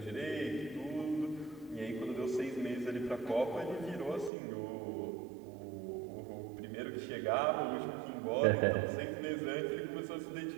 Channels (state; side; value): drops out; left; at 4.3 s